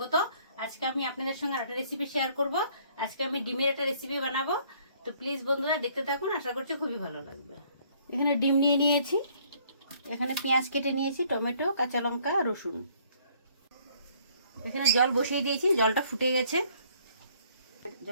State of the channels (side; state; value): both; inverted; correlation -0.62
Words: আজকে আমি আপনাদের সঙ্গে একটা রেসিপি শেয়ার করব। আজকে আমি ডিমের একটা রেসিপি বানাবো, তো প্লিজ বন্ধুরা দেখতে থাকুন, আশা করছি খুবই ভালো লাগবে। এখানে ডিম নিয়ে নিয়েছি, এখানে পেঁয়াজ কেটে নিয়েছি, টমেটো, কাঁচা লঙ্কা, রসুন। এখানে জল বসিয়ে দিয়েছি, জলটা ফুটে গেছে,